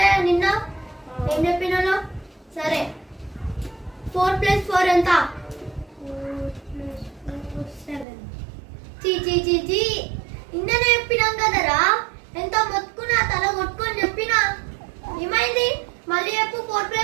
నిన్న ఏం చెప్పినాను? సరే 4 + 4 ఎంత? చీ నిన్ననే చెప్పినాం కదరా. ఎంత మొత్తుకున్నా తల కొట్టుకొని చెప్పినా ఏమైంది? మళ్ళీ చెప్పు. 4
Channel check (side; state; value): left; drops out; at 8.1 s